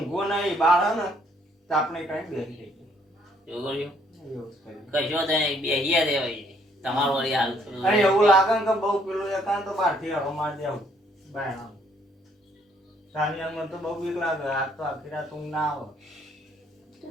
નહીં બાર હે ને તો આપણે કઈ બેસી એવું કર્યું એવું જ કર્યું. કશો તો બેહિયા દેવાય તમારું વળી હાલ અરે એવું લાગે ને કે બહુ પેલું એકાંત તો બહારથી હરો માર દેવું બાયણા સાનિયા મને તો બહુ બીક લાગે આજ તો આખી રાત ઊંઘ ના આવે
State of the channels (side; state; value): both; normal; correlation 0.66